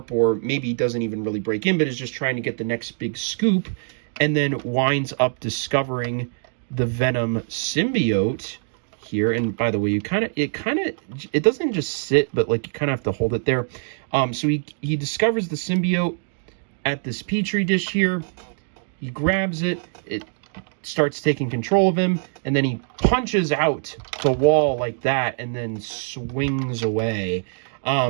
or maybe doesn't even really break in, but is just trying to get the next big scoop, and then winds up discovering the Venom symbiote here. And by the way, it doesn't just sit, but like you kind of have to hold it there. So he discovers the symbiote at this petri dish here. He grabs it. It starts taking control of him, and then he punches out the wall like that, and then swings away.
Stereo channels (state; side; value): silent; left; digital silence